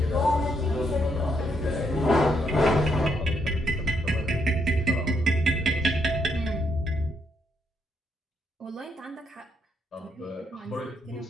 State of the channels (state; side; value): normal; both; correlation 0.76